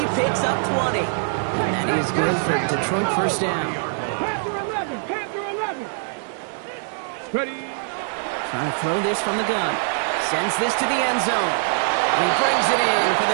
picks up 20. And that is good for Detroit first down. Panther 11. Panther 11. Ready. Trying to throw this from the gun. Sends this to the end zone. And he brings it in for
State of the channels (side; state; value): left; silent; 58 dB below the other